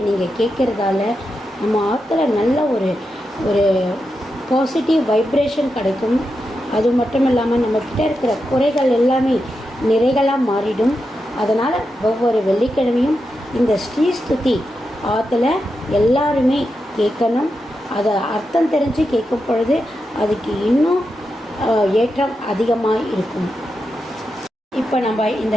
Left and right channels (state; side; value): normal; both; correlation 0.87